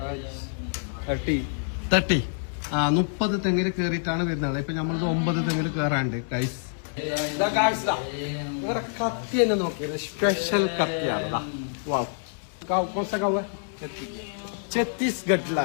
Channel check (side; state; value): right; silent; digital silence